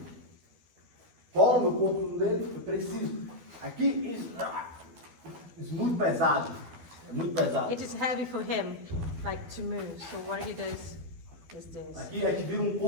Cola meu corpo dele, eu preciso. Aqui, isso muito pesado. É muito pesado. It is heavy for him, like to move. So what he does is this. Aqui a gente vira um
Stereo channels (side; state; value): left; late; 12 ms